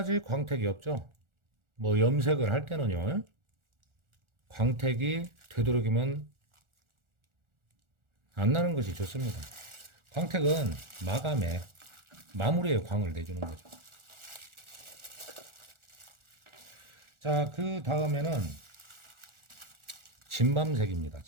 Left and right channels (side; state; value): left; late; 1.4 ms